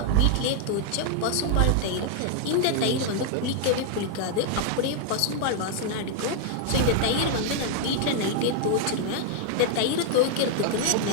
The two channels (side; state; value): both; different; correlation 0.00